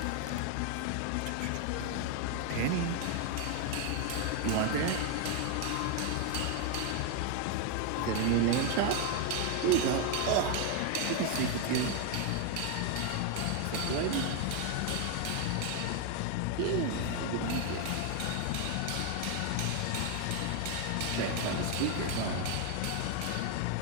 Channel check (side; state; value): both; different; correlation 0.01